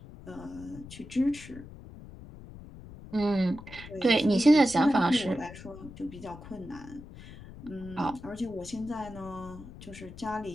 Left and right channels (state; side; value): noise; left; rumble, 15 dB below the sound